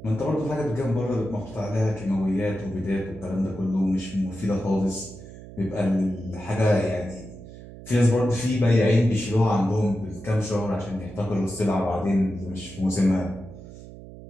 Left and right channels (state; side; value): noise; right; hum, 16 dB below the sound